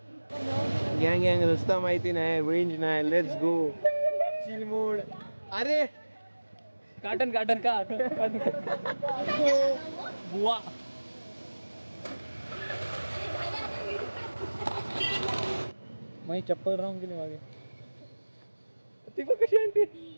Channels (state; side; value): inverted; both; correlation -1.00